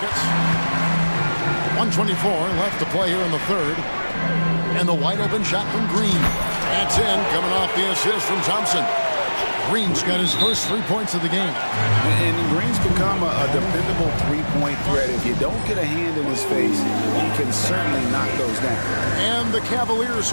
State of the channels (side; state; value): both; inverted; correlation -1.00